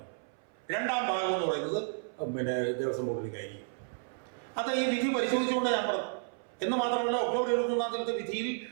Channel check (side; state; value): left; silent; 56 dB below the other